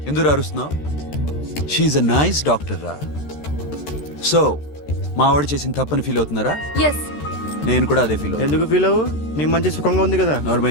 ఎందుకు అరుస్తున్నావు? షీఈ్ అ నైస్ డాక్టర్ రా. సో మా వాడు చేసిన తప్పని ఫీల్ అవుతున్నారా? ఎస్. నేను కూడా అదే ఫీల్. ఎందుకు ఫీల్ అవ్వు? నీకు మంచి సుఖంగా ఉంది కదా.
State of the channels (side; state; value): right; late; 13 ms